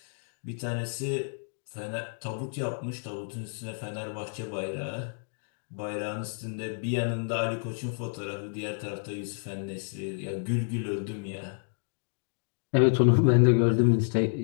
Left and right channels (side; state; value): right; silent; digital silence